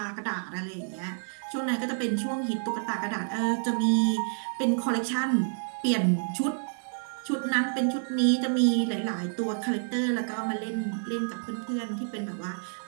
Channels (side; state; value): left; silent; digital silence